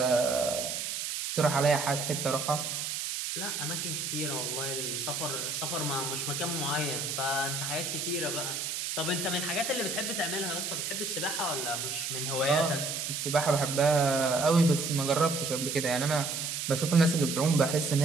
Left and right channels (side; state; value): right; noise; hiss, 3 dB below the sound